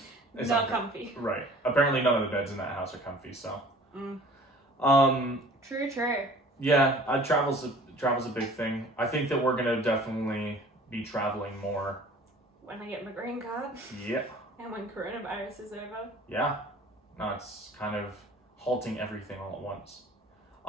comfy. Right. Apparently none of the beds in that house are comfy, so. True. Yeah, travel's a big thing. I think that we're gonna definitely be traveling more. When I get my green card. Yeah. And when coronavirus is over. Yeah. No, it's kind of halting everything all at once.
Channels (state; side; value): normal; both; correlation 0.49